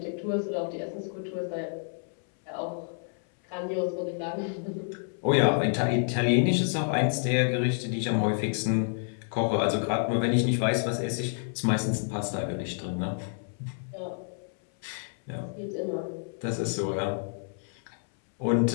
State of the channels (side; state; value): right; silent; 59 dB below the other